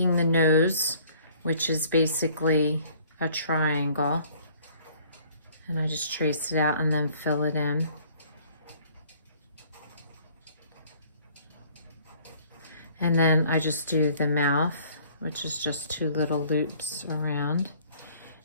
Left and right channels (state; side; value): inverted; both; correlation -0.56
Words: the nose, which is basically a triangle. And I just trace it out and then fill it in. And then I just do the mouth, which is just 2 little loops around.